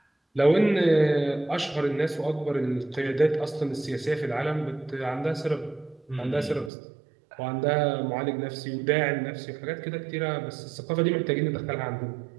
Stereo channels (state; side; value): drops out; left; at 6.7 s